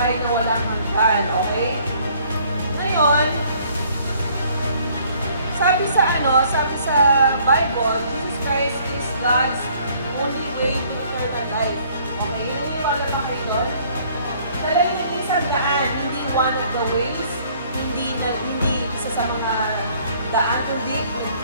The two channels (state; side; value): inverted; both; correlation -0.60